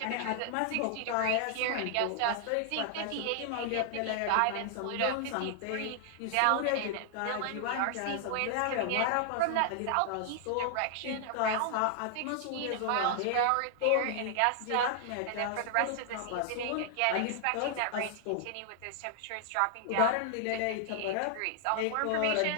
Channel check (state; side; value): different; both; correlation 0.00